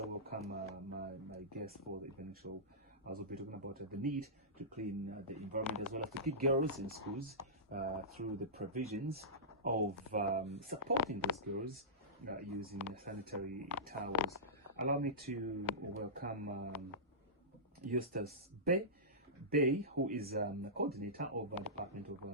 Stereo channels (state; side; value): normal; both; correlation -0.18